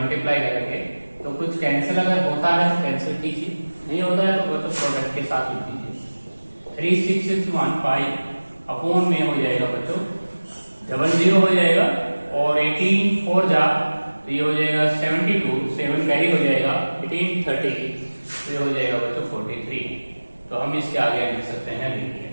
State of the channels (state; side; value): inverted; both; correlation -1.00